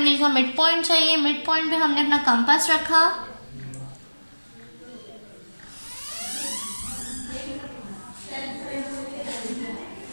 का मिड पॉइंट चाहिए। मिड पॉइंट पे हमने अपना कंपास रखा,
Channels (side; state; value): both; inverted; correlation -1.00